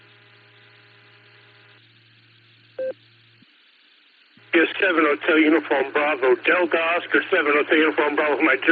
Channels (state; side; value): identical; both; correlation 1.00